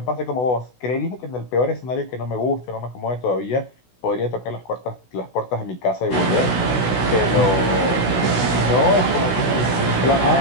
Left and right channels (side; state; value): right; late; 16 ms